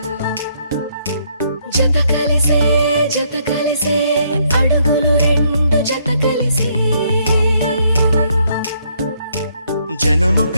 జత కలిసే అడుగులు రెండు జత కలిసే జనమొక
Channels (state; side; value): inverted; both; correlation -0.70